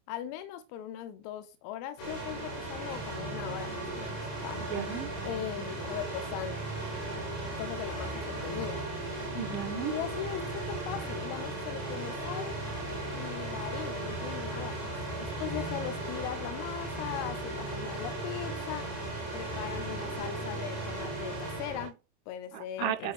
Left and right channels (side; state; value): right; late; 27 ms